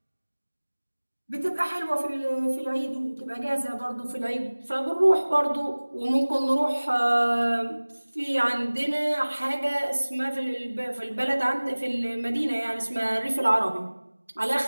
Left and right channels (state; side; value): inverted; both; correlation -1.00